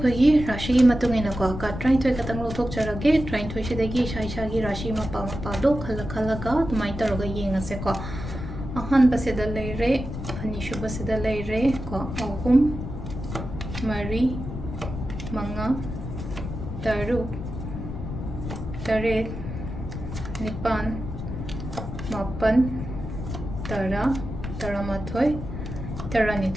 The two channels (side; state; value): left; noise; rumble, 7 dB below the sound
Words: rashi matung ina ko ka try to katang lo thok charage try to shidagi shai shagi rashi ma pa do khala ga tumai taroga yengase ko. Ahan basida leire ani shu basida leire ko ahum mari manga taru taret nipan mapan tara taramathoi